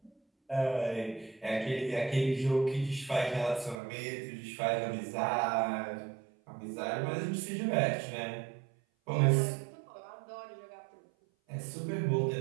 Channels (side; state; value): left; drops out; at 3.8 s